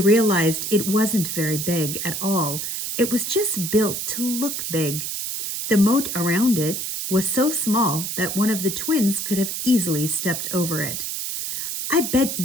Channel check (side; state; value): right; noise; hiss, 4 dB below the sound